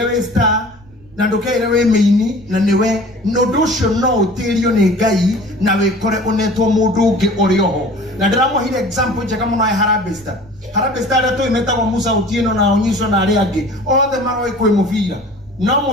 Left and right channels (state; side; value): noise; right; rumble, 27 dB below the sound